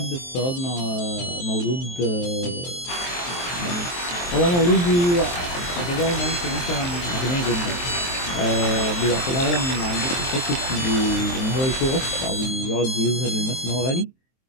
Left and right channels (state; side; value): late; right; 23 ms